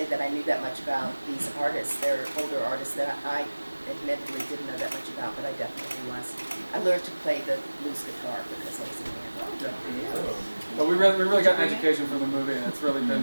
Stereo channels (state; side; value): inverted; both; correlation -1.00